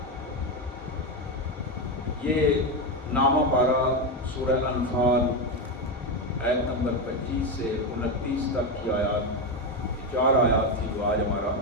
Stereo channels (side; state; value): both; normal; correlation 0.11